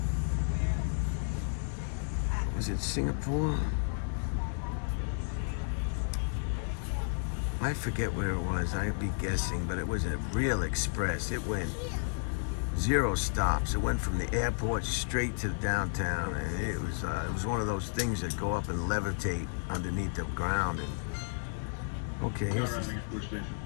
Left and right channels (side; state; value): right; silent; digital silence